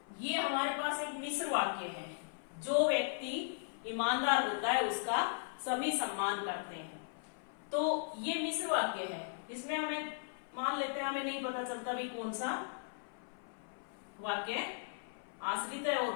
हमारे पास एक मिश्र वाक्य है। जो व्यक्ति ईमानदार होता है उसका सभी सम्मान करते हैं। तो ये मिश्र वाक्य है। इसमें हमें मान लेते हैं हमें नहीं पता चलता भी कौन सा वाक्य आश्रित है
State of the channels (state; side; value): silent; right; 53 dB below the other